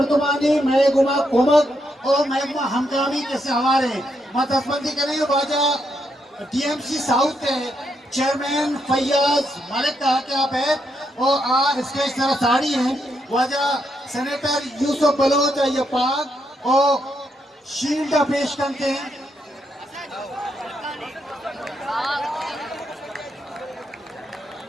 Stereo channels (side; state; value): both; normal; correlation 0.79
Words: मैं गुमा कोमक और मैं गुमा हमकामी कैसे हमारे मतस्बंदी करें वाजा टीएमसी साउथ के चेयरमैन फैयाज मलिक कहा कि आप है और आ स्टेज तरह साड़ी हैं वाजा सेनेटर यूसुफ बलोच ये पाक और शील्ड पेश करते हैं